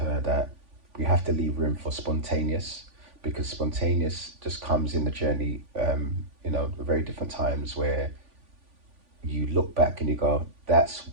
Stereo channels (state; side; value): late; left; 3.5 ms